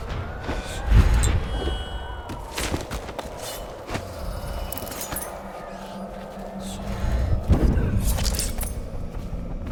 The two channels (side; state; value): both; identical; correlation 1.00